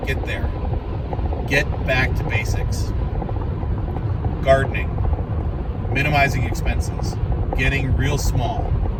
Get there. Get back to basics. Gardening. minimizing expenses, getting real small,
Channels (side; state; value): both; identical; correlation 1.00